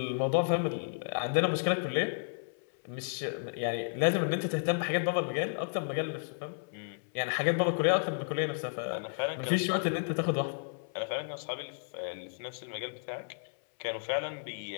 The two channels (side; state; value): right; silent; 56 dB below the other